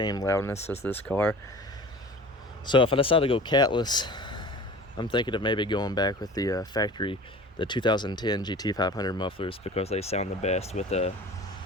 loudness as this car. So if I decide to go catless, I'm thinking of maybe going back with the factory, the 2010 GT500 mufflers, because they sound the best with the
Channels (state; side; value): normal; both; correlation 0.40